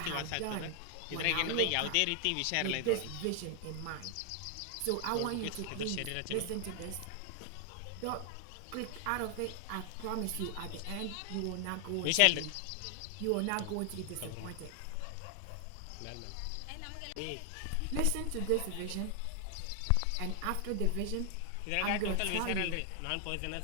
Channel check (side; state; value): both; different; correlation 0.00